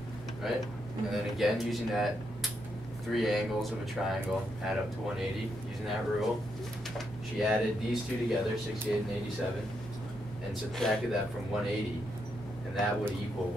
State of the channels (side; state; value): both; normal; correlation 0.80